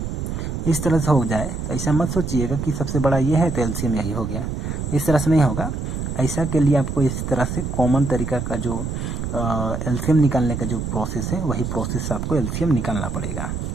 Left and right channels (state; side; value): noise; right; rumble, 4 dB below the sound